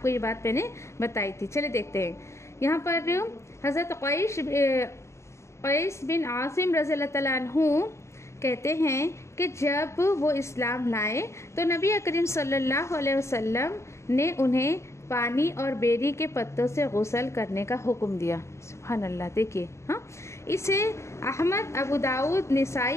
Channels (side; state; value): right; late; 0.14 ms